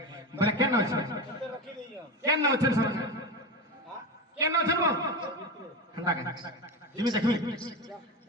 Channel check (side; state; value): both; normal; correlation 0.21